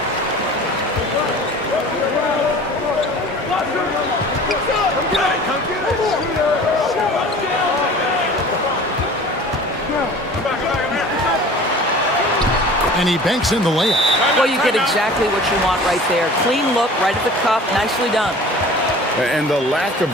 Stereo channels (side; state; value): both; normal; correlation 0.43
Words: And he banks in the layup. Well, you get exactly what you want right there. Clean look, right at the cup, nicely done. And the lack